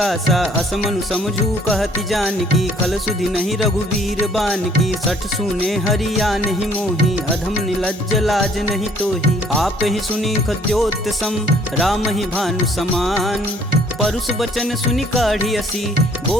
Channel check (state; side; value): normal; both; correlation 0.60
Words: असमनु समझू कहति जानकी, खल सुधि नहीं रघुवीर बान की। सठ सुने हरिया नहीं मोही, अधम निलज्ज लाज नहीं तोही। आप ही सुनी खद्योत सम, राम ही भानु समान। परुष बचन सुनि काढ़ी असी,